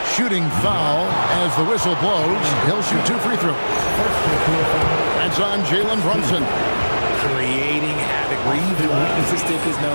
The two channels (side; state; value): both; inverted; correlation -1.00